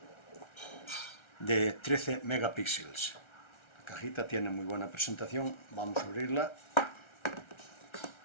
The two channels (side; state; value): right; late; 1.3 ms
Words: de 13 megapíxeles. La cajita tiene muy buena presentación, vamos a abrirla.